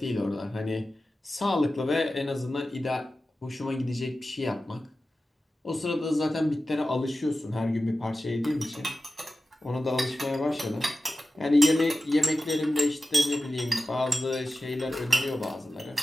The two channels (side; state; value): both; normal; correlation 0.94